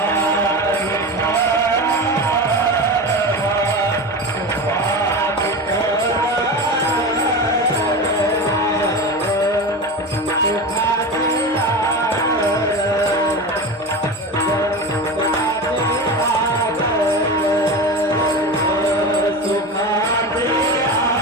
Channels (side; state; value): both; normal; correlation 0.25